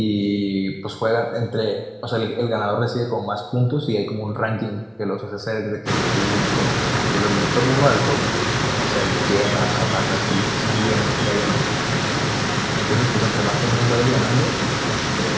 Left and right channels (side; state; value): both; identical; correlation 1.00